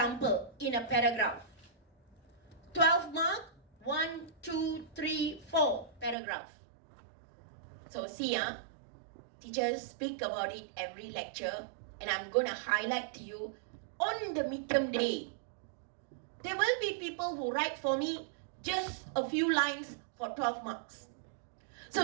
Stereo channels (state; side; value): drops out; left; at 6.2 s